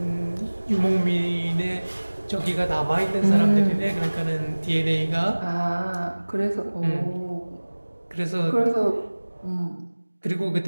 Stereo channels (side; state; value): both; inverted; correlation -1.00